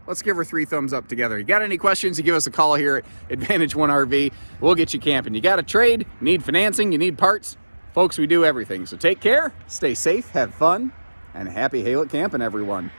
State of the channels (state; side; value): inverted; both; correlation -1.00